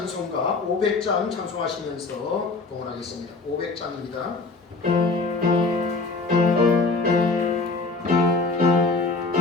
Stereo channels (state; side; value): quieter; right; 3.8 dB